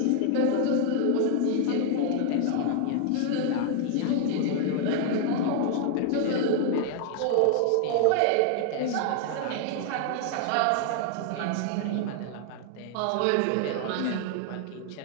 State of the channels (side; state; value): both; different; correlation 0.00